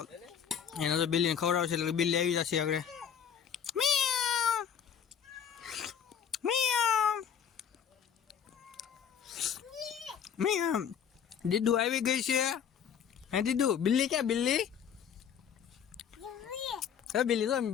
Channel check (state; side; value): quieter; right; 8.1 dB